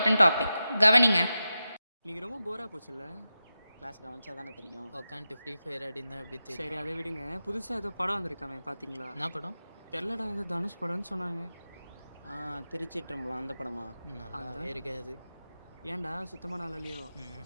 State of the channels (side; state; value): both; inverted; correlation -0.92